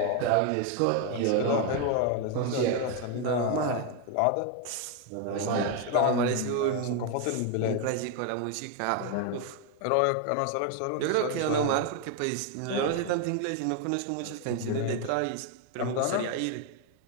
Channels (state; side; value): different; both; correlation 0.01